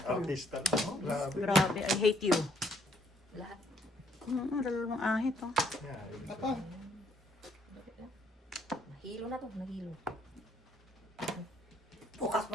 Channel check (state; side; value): normal; both; correlation 0.67